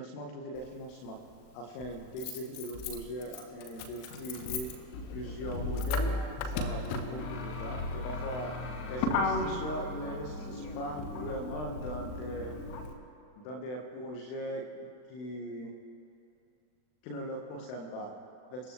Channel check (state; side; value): late; right; 39 ms